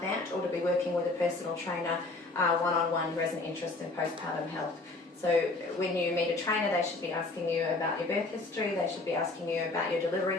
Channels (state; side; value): quieter; right; 3.3 dB